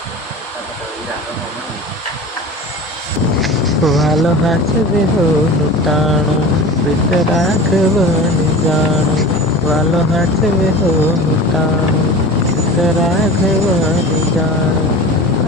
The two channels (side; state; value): both; normal; correlation 0.35